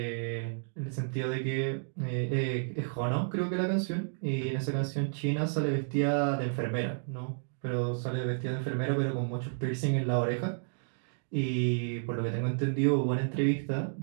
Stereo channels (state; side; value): silent; left; digital silence